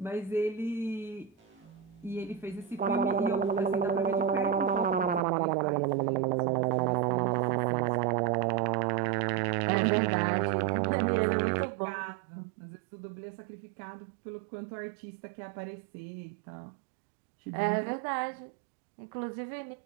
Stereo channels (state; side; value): drops out; left; at 5.2 s